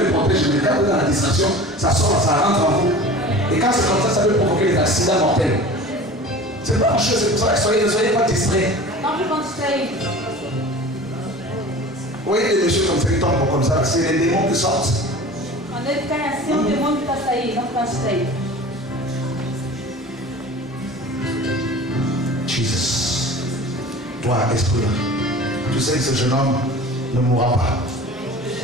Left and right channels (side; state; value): both; normal; correlation 0.39